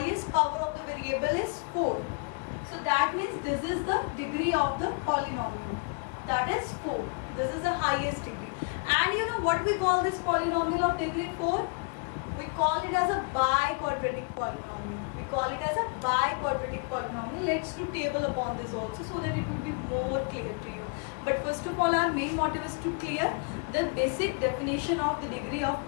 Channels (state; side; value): quieter; right; 33.3 dB